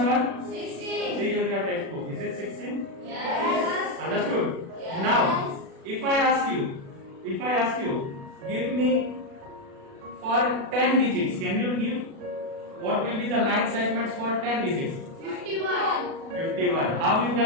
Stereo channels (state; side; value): late; left; 36 ms